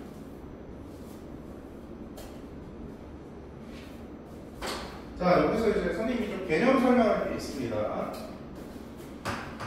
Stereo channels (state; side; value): identical; both; correlation 1.00